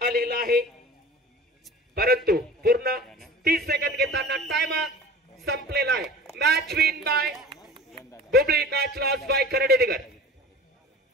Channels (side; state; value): both; normal; correlation 0.40